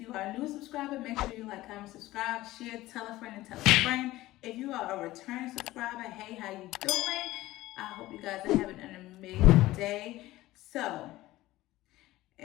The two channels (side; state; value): right; quieter; 17.0 dB